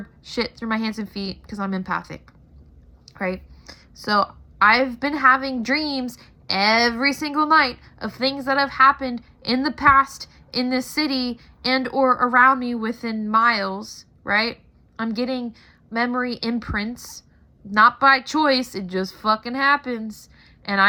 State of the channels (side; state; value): both; identical; correlation 1.00